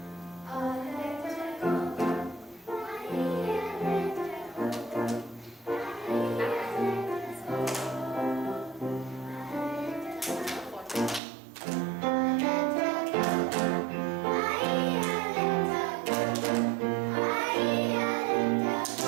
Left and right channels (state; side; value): drops out; left; at 11.2 s